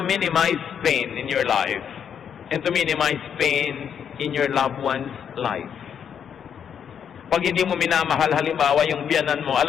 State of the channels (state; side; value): quieter; right; 8.1 dB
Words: minimize pain in your life and to minimize pain in your loved one's life. Pag hindi mo minamahal, halimbawa yung biyanan mo,